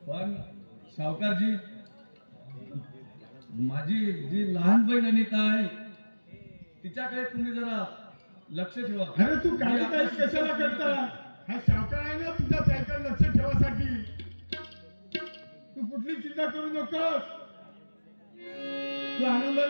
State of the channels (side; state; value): both; inverted; correlation -1.00